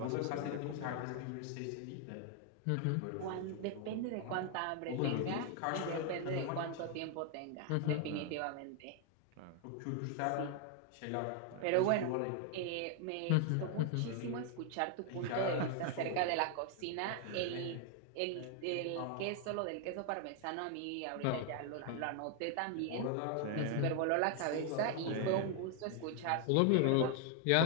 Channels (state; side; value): different; both; correlation 0.00